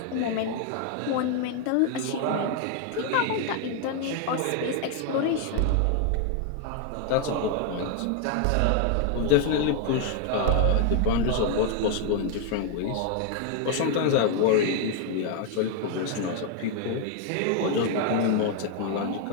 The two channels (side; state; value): both; different; correlation 0.00